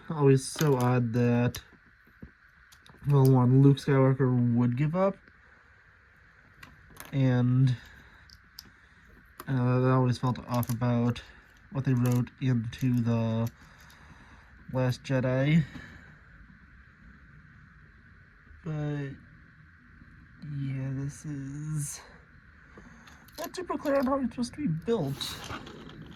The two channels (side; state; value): both; identical; correlation 1.00